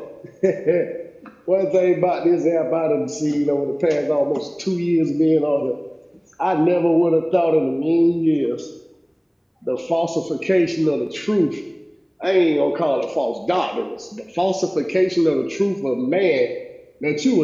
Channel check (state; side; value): identical; both; correlation 1.00